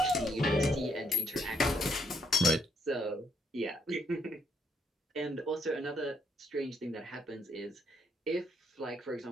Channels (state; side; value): normal; both; correlation 0.72